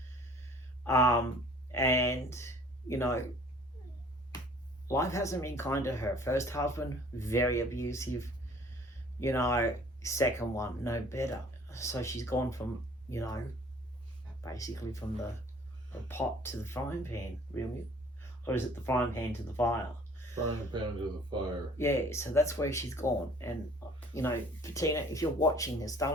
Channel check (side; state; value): both; normal; correlation 0.53